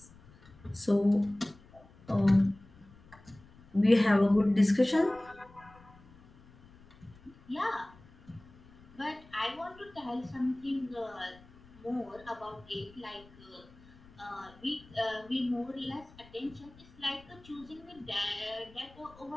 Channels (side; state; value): left; noise; rumble, 24 dB below the sound